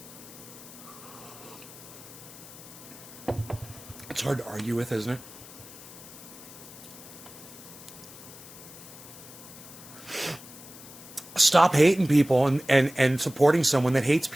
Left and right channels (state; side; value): noise; left; hiss, 17 dB below the sound